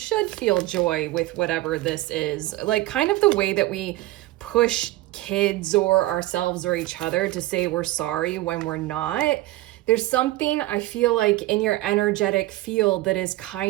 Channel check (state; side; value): quieter; left; 17.5 dB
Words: feel joy with whatever this is. Like, kind of the way that we push kids or ourselves or each other to say we're sorry when we're not. There's something I feel like in your energetic field that is